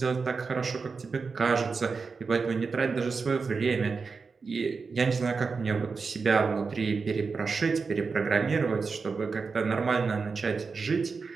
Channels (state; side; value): quieter; left; 4.8 dB